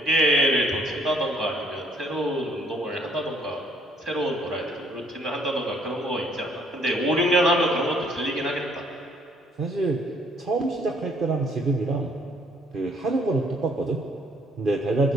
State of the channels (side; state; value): both; normal; correlation 0.64